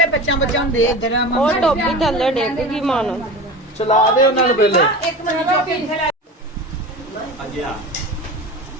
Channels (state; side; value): normal; both; correlation 0.31